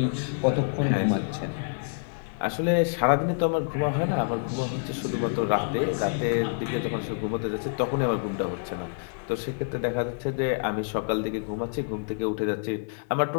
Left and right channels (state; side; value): silent; right; 60 dB below the other